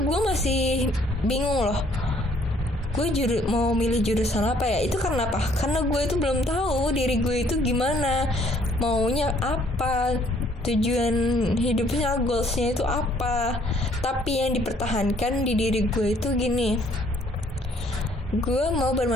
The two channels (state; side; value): normal; both; correlation 0.63